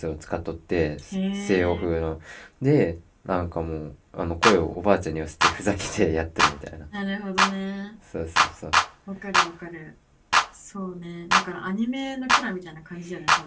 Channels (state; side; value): identical; both; correlation 1.00